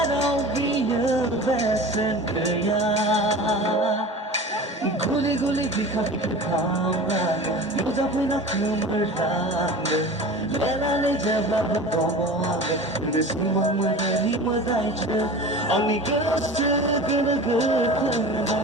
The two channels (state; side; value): normal; both; correlation 0.36